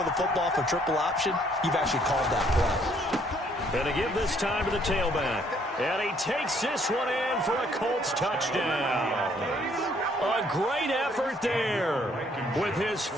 the football for triple option, you've actually called that play. And to give this time to the tailback. And he takes this one in for a Colts touchdown. A great effort there with his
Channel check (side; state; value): both; normal; correlation 0.65